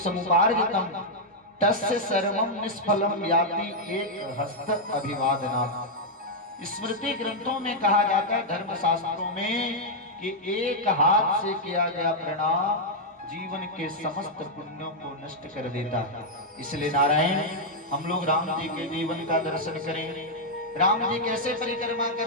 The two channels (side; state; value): both; normal; correlation -0.03